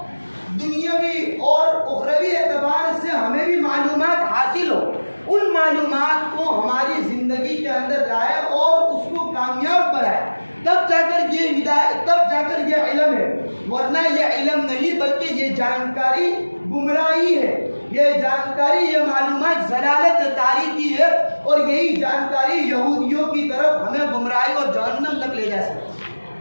دنیاوی اور اخروی اعتبار سے ہمیں بھی معلومات حاصل ہو، ان معلومات کو ہماری زندگی کے اندر لائے اور اس کو کامیاب بنائے، تب جا کر یہ ہدایت، تب جا کر یہ علم ہے، ورنہ یہ علم نہیں بلکہ یہ جانکاری گمراہی ہے، یہ جانکاری، یہ معلومات ضلالت تاریخی ہے، اور یہی جانکاری یہودیوں کی طرف ہمیں گمراہی اور جہنم تک لے جا سکتی ہے۔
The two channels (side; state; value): both; inverted; correlation -1.00